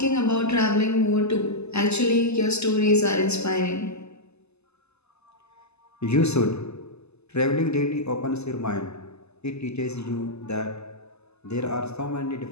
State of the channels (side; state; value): right; late; 0.80 ms